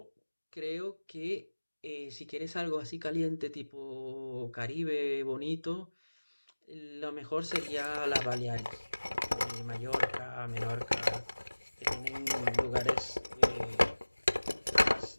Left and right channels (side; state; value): both; inverted; correlation -1.00